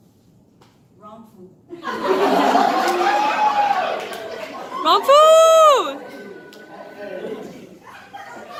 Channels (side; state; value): both; identical; correlation 1.00